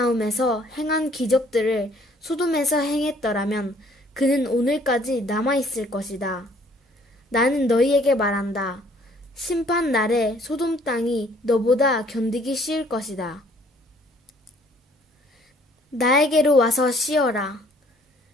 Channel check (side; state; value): both; normal; correlation 0.60